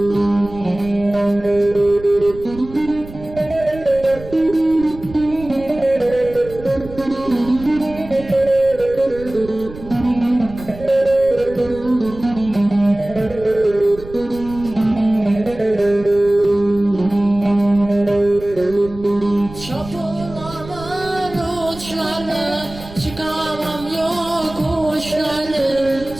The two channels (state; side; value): noise; right; rumble, 16 dB below the sound